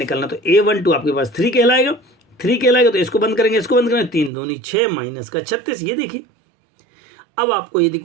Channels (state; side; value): drops out; left; at 4.3 s